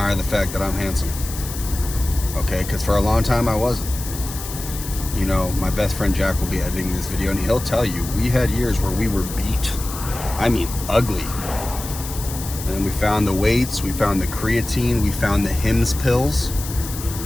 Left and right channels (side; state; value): left; noise; hiss, 10 dB below the sound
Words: the fact that I'm handsome. Okay, because for a long time I wasn't. You know, my best friend Jack will be editing this video and he'll tell you we had years where we were beat. I mean, ugly. And then we found the weights, we found the creatine, we found the Hims pills,